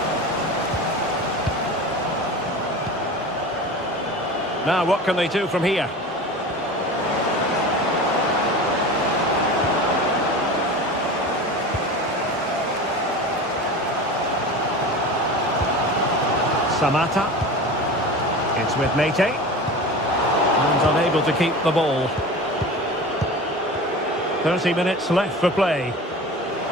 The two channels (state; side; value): normal; both; correlation 0.33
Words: Now, what can they do from here? Samata. It's with Mete. And unable to keep the ball. 30 minutes left for play.